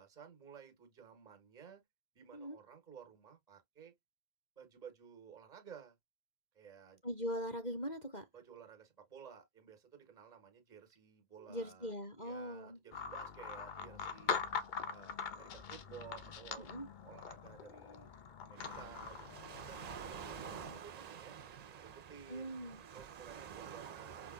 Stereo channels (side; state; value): right; late; 1.9 ms